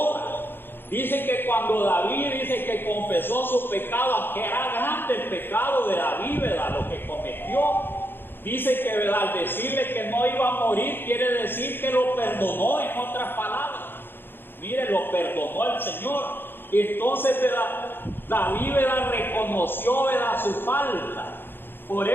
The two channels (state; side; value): late; right; 0.10 ms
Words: Dice que cuando David dice que confesó su pecado, que era grande el pecado de David, ¿verdad?, lo que cometió. Dice que, ¿verdad?, al decirle que no iba a morir, quiere decir que lo perdonó, en otras palabras. Mire, lo perdonó el Señor. Entonces, ¿verdad?, David, ¿verdad?, reconoció, ¿verdad?, su falta. Por